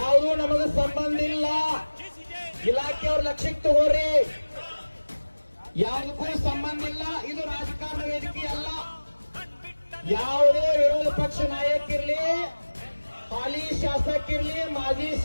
ನಮಗೆ ಸಂಬಂಧ ಇಲ್ಲ. ಇಲಾಖೆಯವ್ರ ಲಕ್ಷ್ಯಕ್ಕೆ ತಗೋರಿ, ಯಾವುದಕ್ಕೂ ಸಂಬಂಧ ಇಲ್ಲ. ಇದು ರಾಜಕಾರಣ ವೇದಿಕೆ ಅಲ್ಲ. ಯಾವುದೇ ವಿರೋಧ ಪಕ್ಷ ನಾಯಕಿರ್ಲಿ, ಹಾಲಿ ಶಾಸಕಿರ್ಲಿ, ಮಾಜಿ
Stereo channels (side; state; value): both; inverted; correlation -1.00